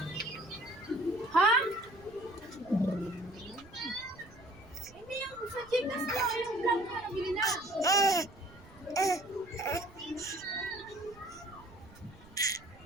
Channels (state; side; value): noise; right; rumble, 22 dB below the sound